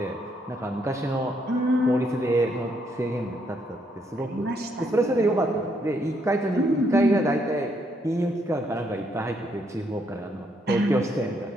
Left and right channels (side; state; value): both; normal; correlation 0.74